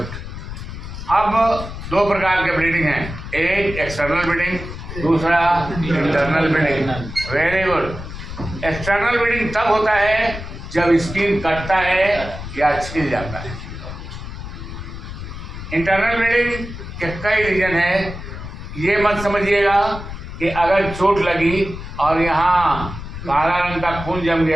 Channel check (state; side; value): noise; left; rumble, 10 dB below the sound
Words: अब 2 प्रकार के ब्लीडिंग हैं, एक एक्सटर्नल ब्लीडिंग, दूसरा internal bleeding. Very good. External bleeding तब होता है जब स्किन कटता है या छिल जाता है। इंटरनल ब्लीडिंग के कई रीजन है। ये मत समझिएगा कि अगर चोट लगी और यहाँ काला रंग का खून जम